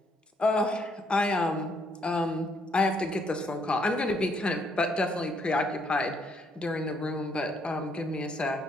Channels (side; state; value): both; normal; correlation 0.70